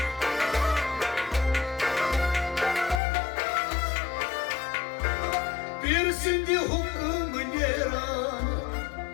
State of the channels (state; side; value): drops out; right; at 3.0 s